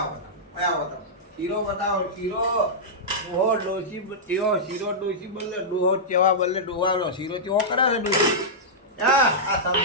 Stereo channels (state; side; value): normal; both; correlation -0.11